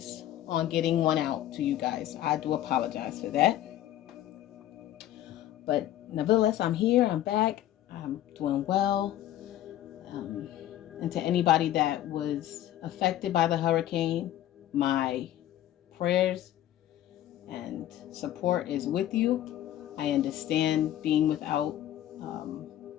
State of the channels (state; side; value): quieter; right; 12.8 dB